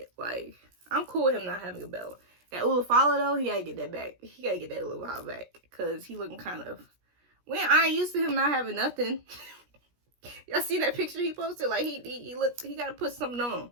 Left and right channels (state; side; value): late; left; 17 ms